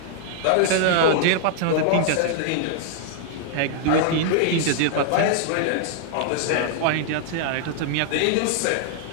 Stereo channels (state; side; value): different; both; correlation 0.00